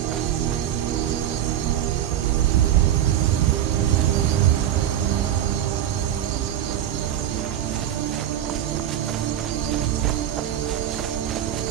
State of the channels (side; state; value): left; quieter; 11.1 dB